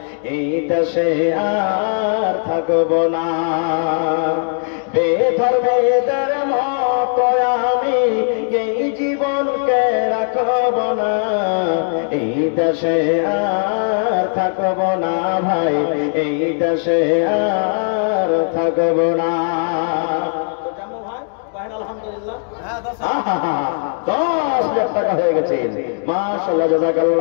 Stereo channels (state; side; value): silent; right; 67 dB below the other